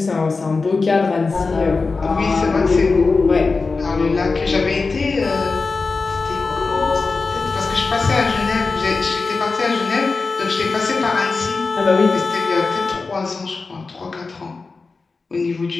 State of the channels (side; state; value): right; quieter; 4.1 dB